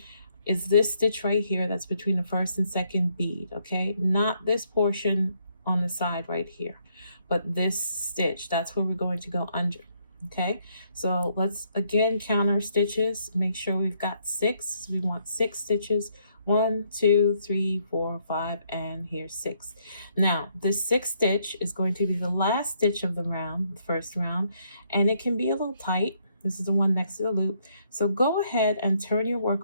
is this stitch right here that's between the first and second bead, okay? Not this portion on the side right here, but this stitch, that's where we're going to go under, okay? So let's again count our stitches, make sure we've got 6. So we want 6 stitches. 1, 2, 3, 4, 5, and here's 6. Now, this 6th stitch is going to be the last stitch of the round, the first round, and it can be a little tight. This is the one next to the loop. So go ahead and turn your work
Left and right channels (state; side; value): inverted; both; correlation -0.72